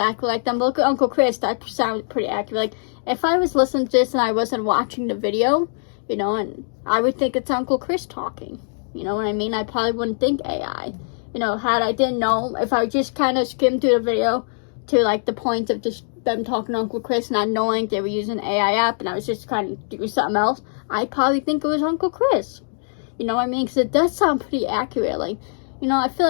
like them. But look at Uncle Chris. That sounds pretty accurate. Like, if I was listening to this and I wasn't watching the video, you know, and I would think it's Uncle Chris talking. You know what I mean? I probably wouldn't think AI. You know, had I didn't know, if I just kind of skimmed through the video to, like, the point of just them talking to Uncle Chris, not knowing they were using an AI app, and I was just kind of doing something else, I probably think it was Uncle Chris. You know what I mean? Because it does sound pretty accurate. Like, you know, I feel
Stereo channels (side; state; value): right; silent; digital silence